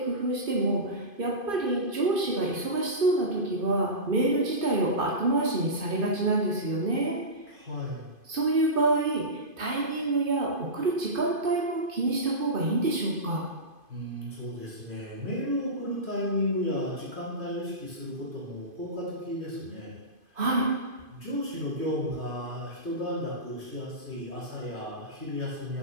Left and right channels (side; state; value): left; late; 2.5 ms